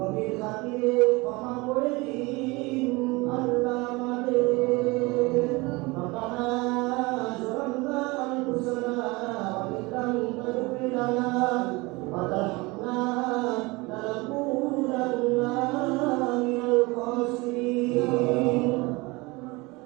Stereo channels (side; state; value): left; quieter; 24.2 dB